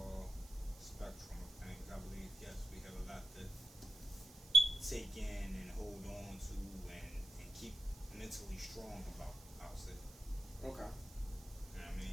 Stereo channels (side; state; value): right; noise; hiss, 19 dB below the sound